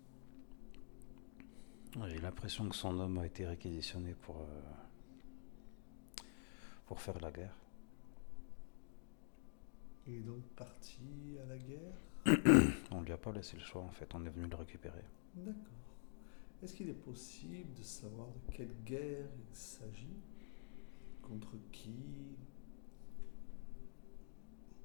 J'ai l'impression que son homme a été réquisitionné pour faire la guerre. Il est donc parti à la guerre? On lui a pas laissé le choix en fait, on est venu le récupérer. D'accord. Est-ce qu'il est possible de savoir de quelle guerre il s'agit? Contre qui?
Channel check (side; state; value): right; silent; digital silence